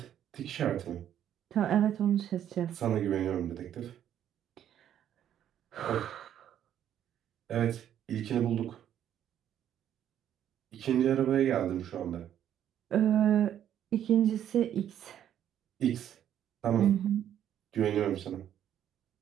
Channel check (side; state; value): left; quieter; 10.4 dB